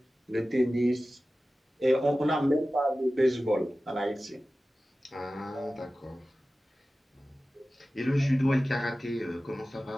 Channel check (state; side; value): normal; both; correlation 0.95